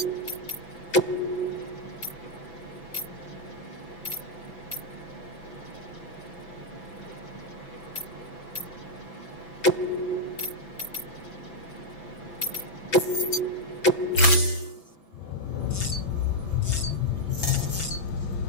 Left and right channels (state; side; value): late; right; 6.0 ms